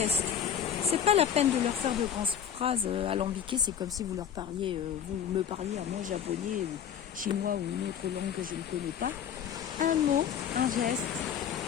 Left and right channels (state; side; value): quieter; right; 8.7 dB